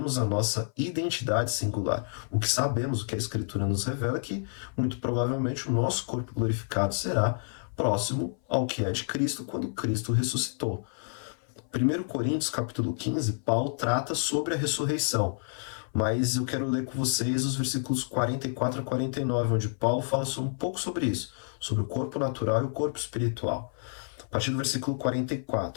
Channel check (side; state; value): right; silent; 57 dB below the other